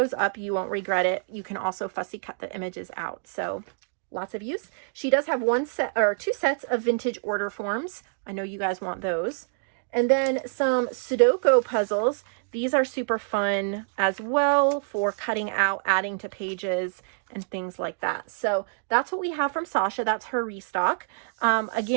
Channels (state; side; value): silent; left; digital silence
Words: up. You won't regret it. You can also fussy cut the images out. So lots of use. She does have 1 set or 2 sets of vintage order forms. I know you guys want those. And then some Sudoku puzzles. These are super fun as well for cutting out, adding to pages and things like that. So that's what we have from Sasha. That's her restock.